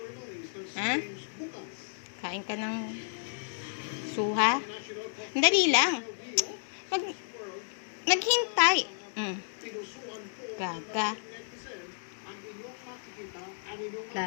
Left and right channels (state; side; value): silent; right; digital silence